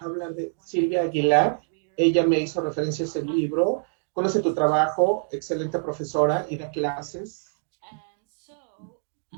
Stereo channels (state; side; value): silent; left; digital silence